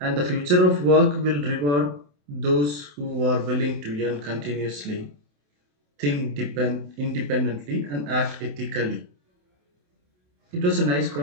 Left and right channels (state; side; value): late; left; 28 ms